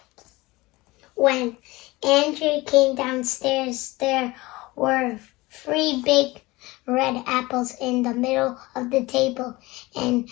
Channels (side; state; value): right; quieter; 21.1 dB